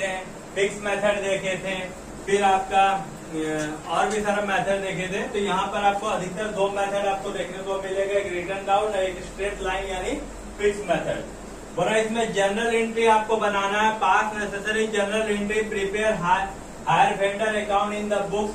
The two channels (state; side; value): identical; both; correlation 1.00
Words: थे, फिक्स मेथड देखे थे, फिर आपका और भी सारा मेथड देखे थे। तो यहाँ पर आपको अधिकतर 2 मेथड आपको देखने को मिलेगा, एक रिटर्न डाउन और एक स्ट्रेट लाइन यानी फिक्स मेथड। बोला इसमें जनरल एंट्री आपको बनाना है। Pass necessary general entry prepare hire vendor account in the